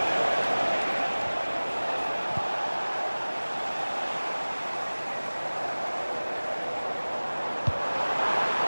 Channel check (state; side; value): inverted; both; correlation -1.00